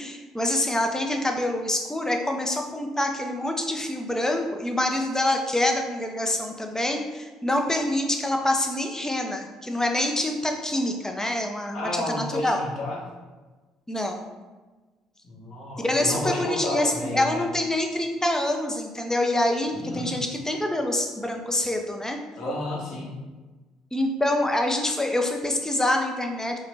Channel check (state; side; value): normal; both; correlation 0.75